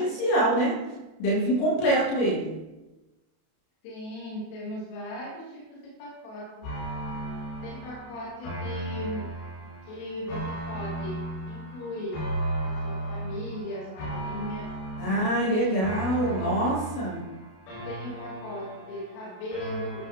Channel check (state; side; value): late; right; 32 ms